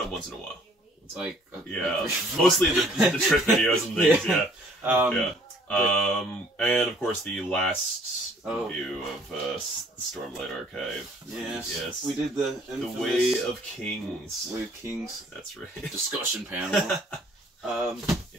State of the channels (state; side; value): normal; both; correlation 0.58